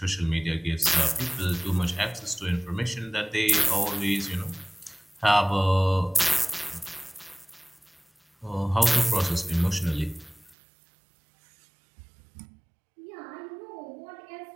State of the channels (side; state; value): left; drops out; at 10.6 s